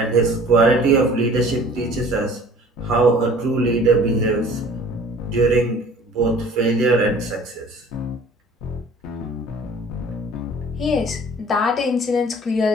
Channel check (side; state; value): both; normal; correlation 0.49